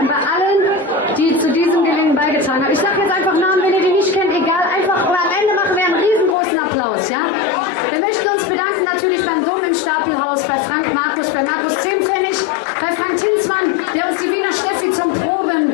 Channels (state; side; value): drops out; right; at 6.4 s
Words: bei allen, die zu diesem Gelingen beigetragen haben. Ich sage jetzt einfach Namen, wenn ihr die nicht kennt, egal, einfach, aber am Ende machen wir einen riesengroßen Applaus, ja? Wir möchten uns bedanken natürlich beim Dom im Stapelhaus, bei Frank Markus, bei Markus Zehnpfennig, bei Frank Tinsmann, der uns die Wiener Steffi zum